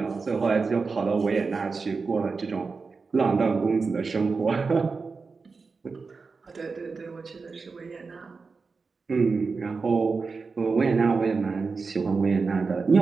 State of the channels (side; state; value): left; quieter; 4.5 dB